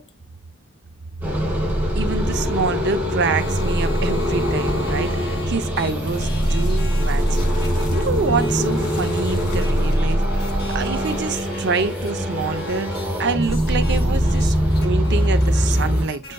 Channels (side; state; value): both; normal; correlation 0.67